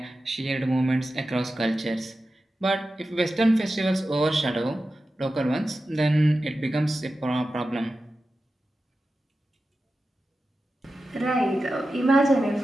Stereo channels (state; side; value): normal; both; correlation 0.93